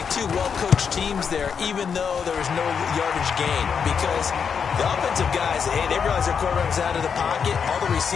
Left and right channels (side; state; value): right; quieter; 6.6 dB